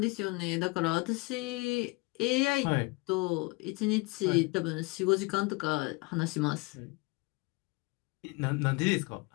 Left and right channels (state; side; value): quieter; right; 25.6 dB